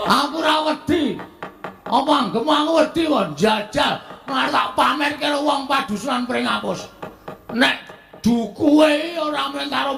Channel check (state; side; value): identical; both; correlation 1.00